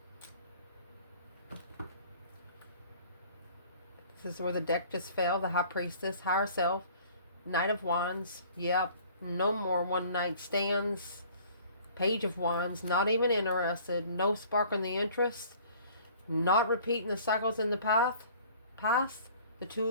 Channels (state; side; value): inverted; both; correlation -0.51